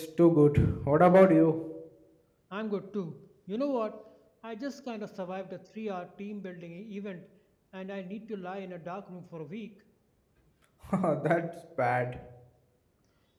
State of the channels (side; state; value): both; identical; correlation 1.00